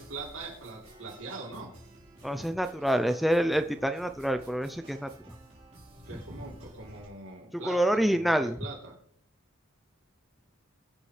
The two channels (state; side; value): normal; both; correlation 0.89